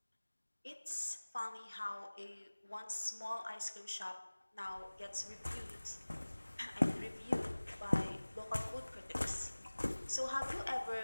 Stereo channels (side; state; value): both; inverted; correlation -1.00